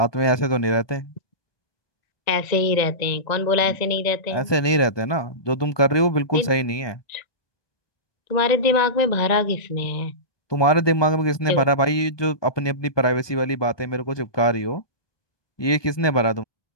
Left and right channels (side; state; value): right; late; 1.2 ms